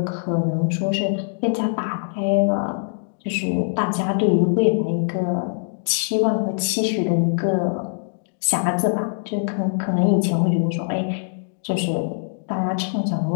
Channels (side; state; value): right; silent; digital silence